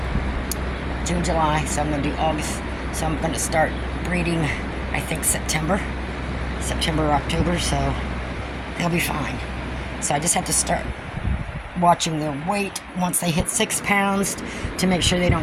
June, July. So I'm gonna do August. So I'm gonna start breeding, I think September or October. So they'll be fine. So I just have to start watching their weight once they hit 6 pounds to make sure they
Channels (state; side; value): identical; both; correlation 1.00